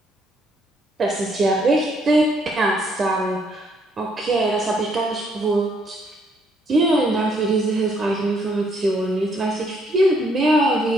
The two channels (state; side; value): normal; both; correlation 0.69